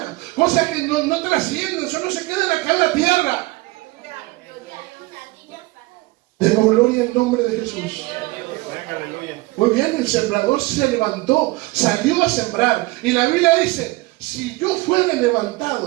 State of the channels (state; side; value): quieter; left; 21.6 dB